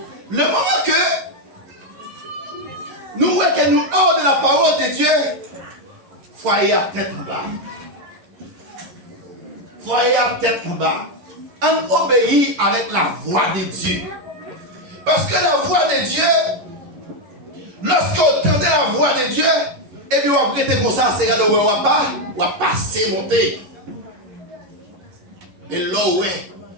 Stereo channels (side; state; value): left; late; 11 ms